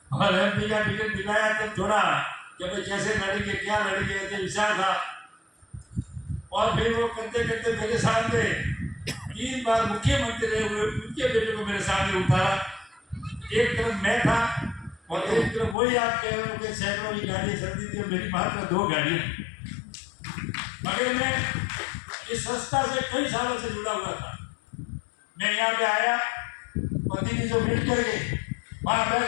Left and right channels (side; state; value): right; drops out; at 15.8 s